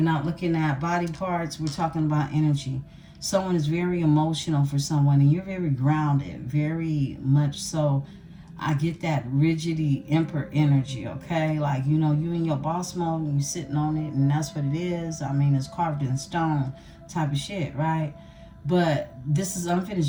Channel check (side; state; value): both; identical; correlation 1.00